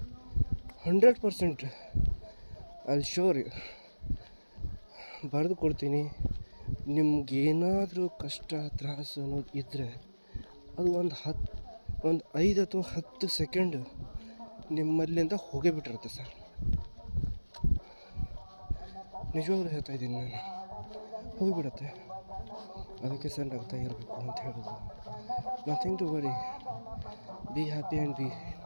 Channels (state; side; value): inverted; both; correlation -1.00